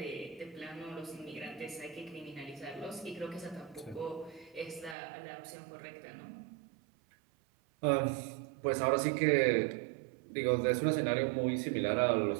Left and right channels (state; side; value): drops out; left; at 5.0 s